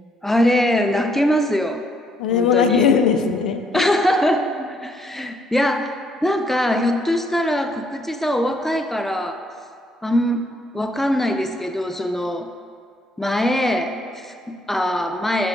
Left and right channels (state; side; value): normal; both; correlation 0.70